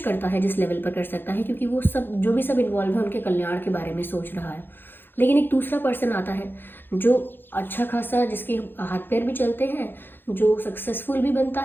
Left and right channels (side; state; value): right; late; 0.099 ms